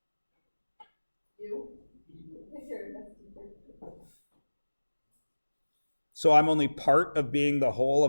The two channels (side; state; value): both; inverted; correlation -1.00